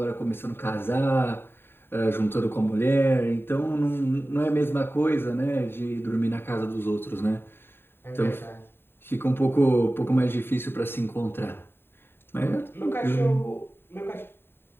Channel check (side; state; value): right; late; 0.11 ms